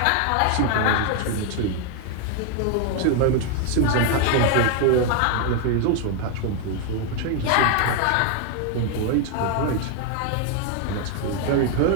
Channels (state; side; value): different; both; correlation 0.01